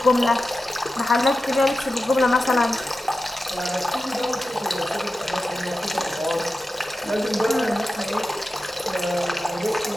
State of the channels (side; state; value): both; normal; correlation 0.92